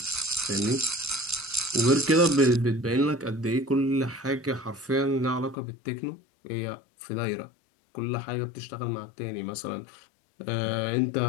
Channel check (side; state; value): right; drops out; at 5.6 s